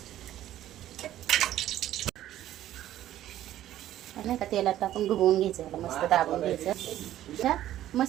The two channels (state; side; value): quieter; left; 12.9 dB